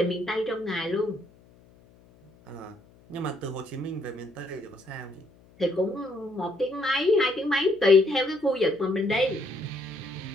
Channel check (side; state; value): left; noise; hum, 28 dB below the sound